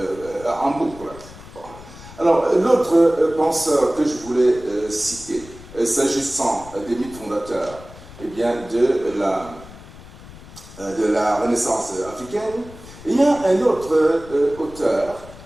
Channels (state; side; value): noise; left; rumble, 18 dB below the sound